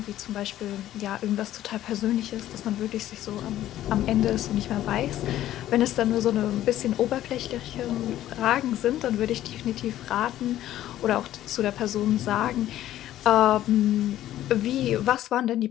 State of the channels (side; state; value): right; quieter; 13.2 dB